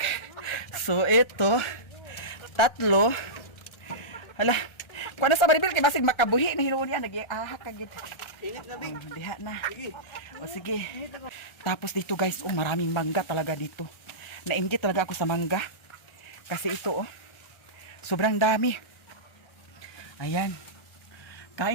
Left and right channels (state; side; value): late; right; 1.3 ms